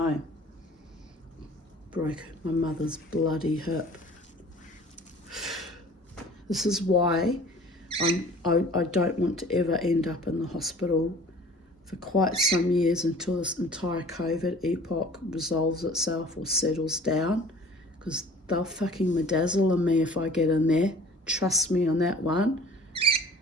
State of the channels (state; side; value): normal; both; correlation 0.48